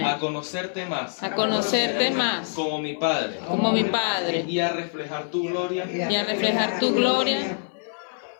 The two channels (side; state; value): right; silent; 56 dB below the other